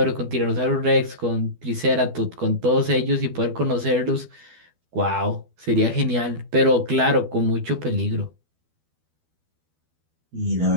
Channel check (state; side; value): late; left; 12 ms